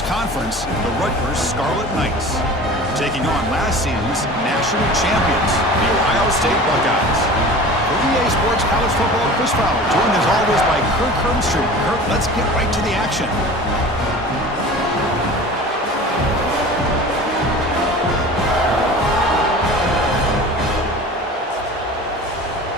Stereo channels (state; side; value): normal; both; correlation 0.39